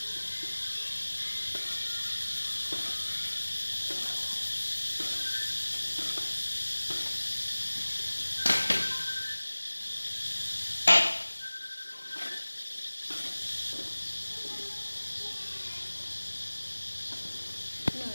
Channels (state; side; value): inverted; both; correlation -1.00